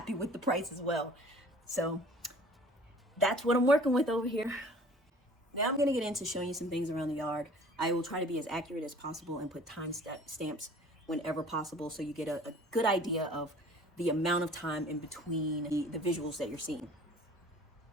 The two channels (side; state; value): both; normal; correlation 0.49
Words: with the price as well. So that's what I'm working with over here. Now I'm going to get into showing you some things around the yard. I will try to be as accurate as possible and put time stamps whenever possible, so you get a good idea of the amount of time in between the visuals that you're seeing.